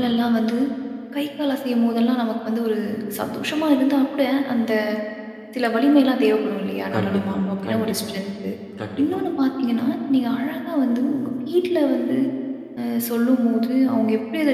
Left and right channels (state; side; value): identical; both; correlation 1.00